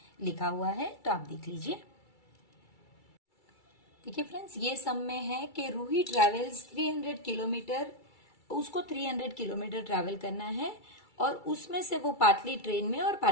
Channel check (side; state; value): right; late; 2.3 ms